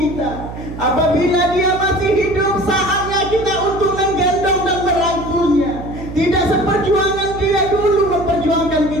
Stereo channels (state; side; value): noise; right; hum, 10 dB below the sound